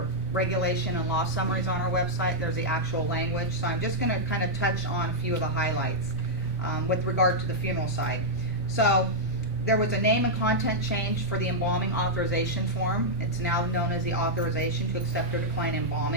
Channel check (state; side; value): normal; both; correlation -0.06